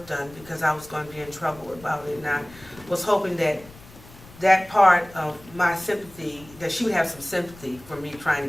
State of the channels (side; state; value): left; noise; rumble, 21 dB below the sound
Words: done because I was going to be in trouble about it, and I was hoping that that part of my sympathy, that she would have some sympathy for me trying